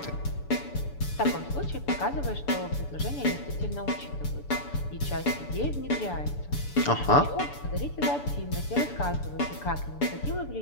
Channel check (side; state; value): right; late; 6.9 ms